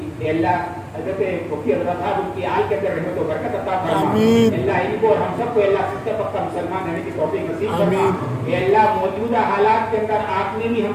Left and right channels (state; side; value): identical; both; correlation 1.00